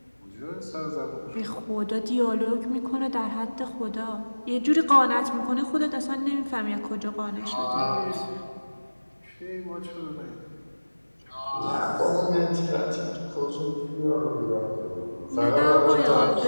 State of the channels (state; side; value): inverted; both; correlation -1.00